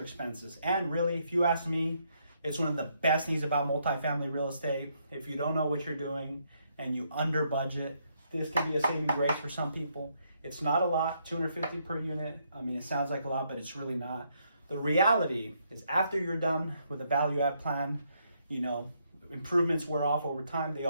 expenses. And really, if you ask me, it's one of the best things about multifamily real estate. If you don't know what you're doing and you under budget, this can be a saving grace for some people. It's not a lot, $250 per unit. I mean, it sounds like a lot, but it's really not. The reality is after you're done with a value add plan, you know, improvements wear off over time. They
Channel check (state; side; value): inverted; both; correlation -0.74